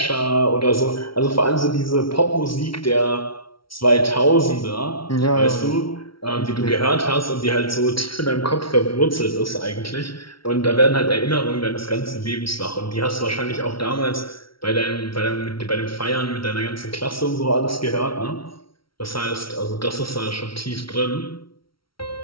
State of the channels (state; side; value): late; right; 0.74 ms